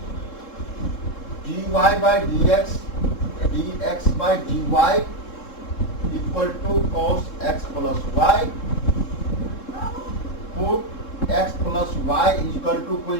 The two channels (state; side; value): late; right; 3.7 ms